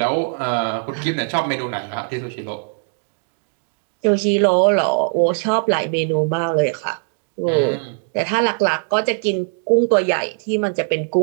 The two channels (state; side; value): silent; left; 66 dB below the other